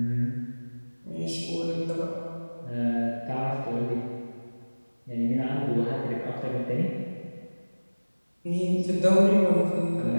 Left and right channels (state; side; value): inverted; both; correlation -1.00